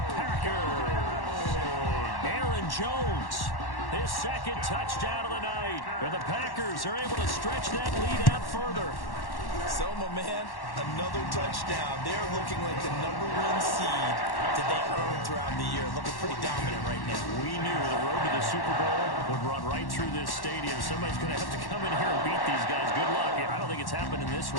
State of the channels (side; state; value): right; late; 1.1 ms